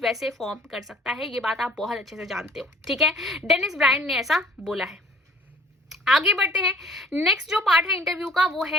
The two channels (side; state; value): both; normal; correlation 0.53